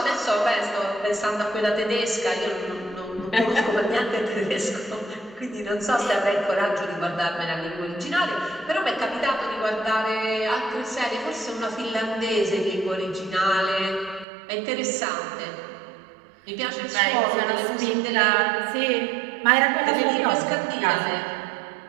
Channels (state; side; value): drops out; left; at 14.2 s